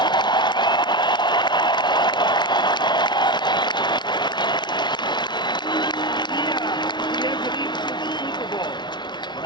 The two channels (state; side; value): late; right; 0.21 ms